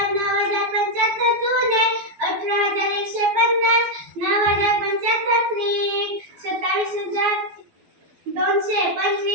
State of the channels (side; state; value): left; late; 12 ms